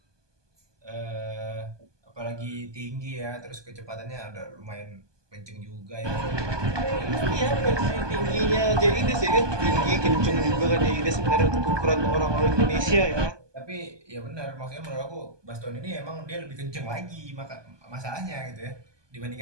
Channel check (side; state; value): left; late; 1.2 ms